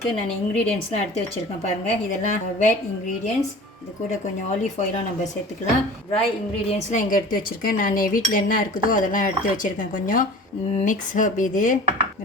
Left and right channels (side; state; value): both; normal; correlation 0.41